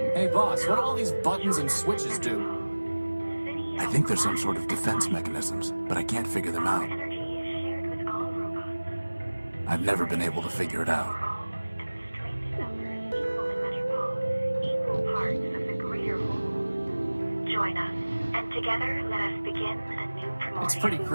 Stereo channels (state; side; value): inverted; both; correlation -1.00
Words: Hey boss, what do all these buttons and switches do? I think there's some sort of defense mechanisms, but I can't figure them out. I've never been able to figure it out. Join us, and together let us begin a new Primordia. It's pretty